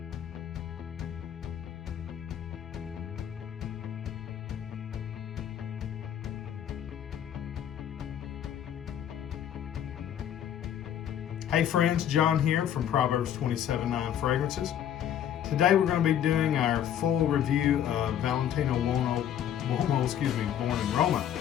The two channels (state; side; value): quieter; right; 10.0 dB